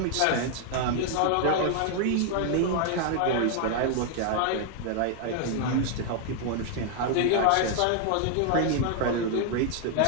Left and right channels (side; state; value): both; different; correlation 0.00